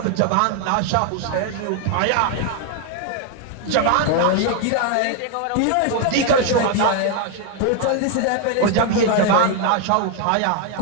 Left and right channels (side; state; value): both; different; correlation 0.00